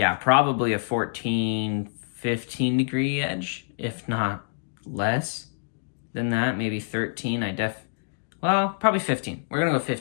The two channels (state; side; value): silent; right; digital silence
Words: probably a 14, 15 degree edge, if not less than that, maybe 13. Well, probably 15. We're going to go